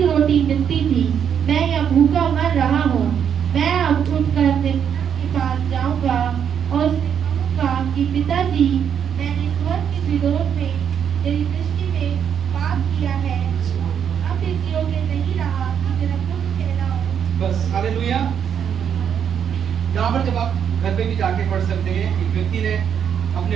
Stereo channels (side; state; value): left; quieter; 8.2 dB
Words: रोटी मिलती थी, मैं यहाँ भूखा मर रहा हूँ। मैं अब उठकर अपने पिता के पास जाऊंगा और उससे कहूंगा कि पिताजी, मैंने स्वर्ग के विरोध में तेरी दृष्टि में पाप किया है, अब इस योग्य नहीं रहा कि तेरा पुत्र कहलाऊं। बस। हालेलुया। यहाँ पर जब आप घर पे भी जाके पढ़ सकते हैं, एक व्यक्ति ने अपने